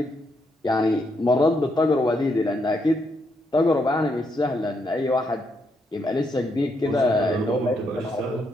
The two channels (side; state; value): both; normal; correlation 0.78